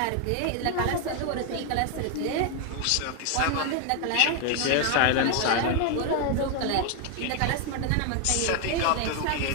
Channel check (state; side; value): different; both; correlation 0.01